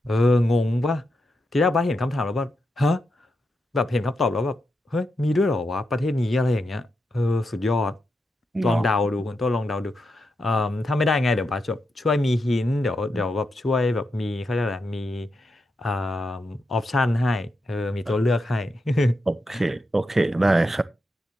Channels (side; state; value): both; normal; correlation 0.85